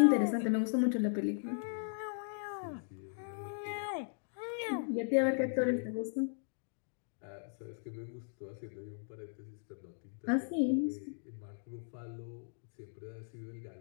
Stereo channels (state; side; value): silent; right; digital silence